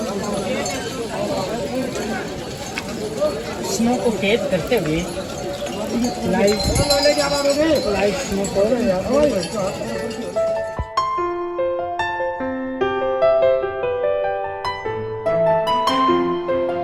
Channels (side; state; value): both; identical; correlation 1.00